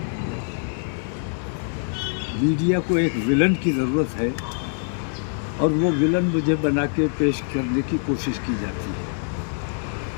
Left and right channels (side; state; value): right; silent; 62 dB below the other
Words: मीडिया को एक विलन की ज़रूरत है और वो विलन मुझे बना के पेश करने की कोशिश की जाती